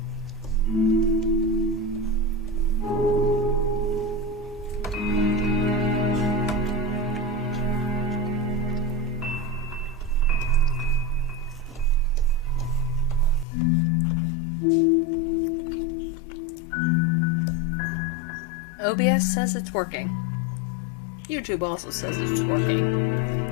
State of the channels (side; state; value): right; drops out; at 13.5 s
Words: OBS says it's working. YouTube also says it's working.